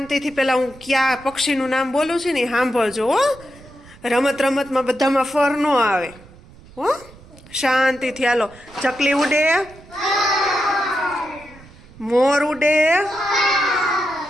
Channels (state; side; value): noise; right; rumble, 22 dB below the sound